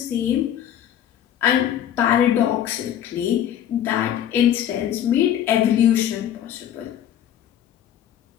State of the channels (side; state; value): right; quieter; 10.5 dB